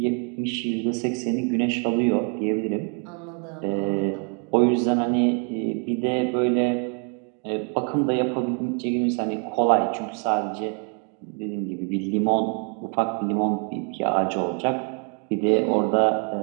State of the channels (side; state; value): left; quieter; 38.3 dB